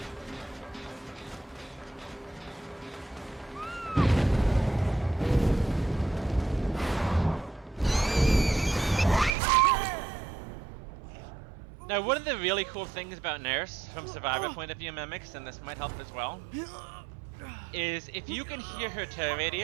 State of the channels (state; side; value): drops out; left; at 9.3 s